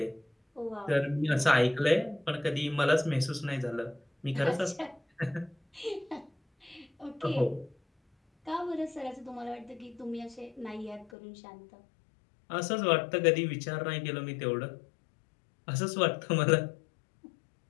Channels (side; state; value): right; drops out; at 11.1 s